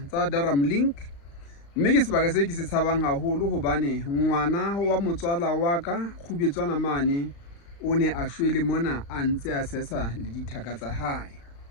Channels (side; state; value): right; late; 35 ms